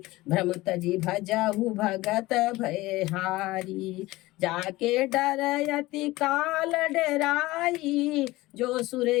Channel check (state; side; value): quieter; right; 19.1 dB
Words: भ्रम तजी भजहु भगत भयहारी, जाके डरयति काल डराई, जो सुर